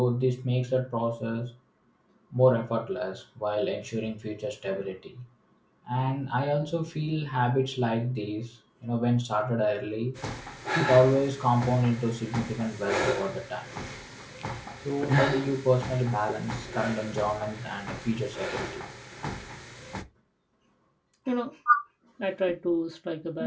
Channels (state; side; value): identical; both; correlation 1.00